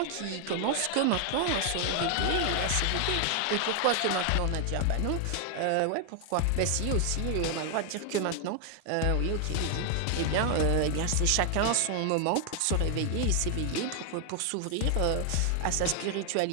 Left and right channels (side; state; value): both; different; correlation 0.00